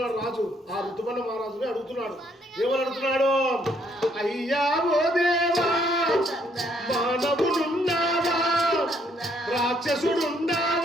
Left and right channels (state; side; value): normal; both; correlation 0.69